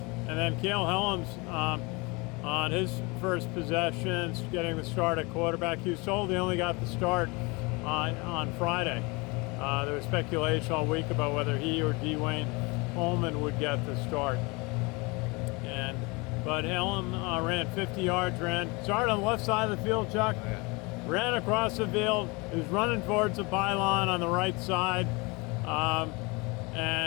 then Cale Helms on his first possessions, getting the start at quarterback. He was told he only got the start on Friday. There was speculation all week about whether he or Dwayne Coleman would get the start. But Helm ran 50 yards, started on the left side of the field, Chuck. Ran across the field. He was running towards the pylon on the right side,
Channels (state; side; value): quieter; right; 27.0 dB